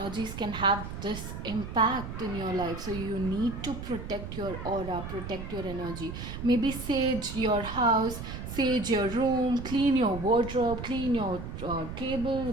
can have this impact in your life. So you need to protect your aura, protect your energy. Maybe sage your house, sage your room, clean your wardrobe, clean your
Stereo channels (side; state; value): right; noise; rumble, 8 dB below the sound